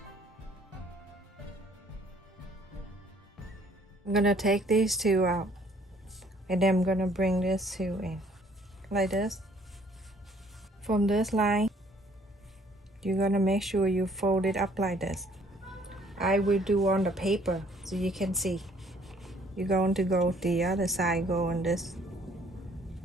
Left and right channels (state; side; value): normal; both; correlation 0.60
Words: I'm gonna take these two out, and then I'm gonna bring this two in like this. From this line, you're gonna make sure you fold it up like this. I will do on the paper so you can see. You're going to go the other side, going this